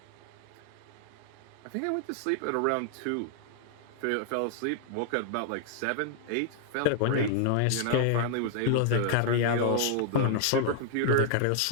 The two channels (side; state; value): both; different; correlation -0.01